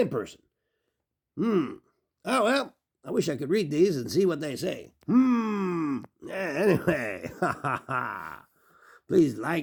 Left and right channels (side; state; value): both; identical; correlation 1.00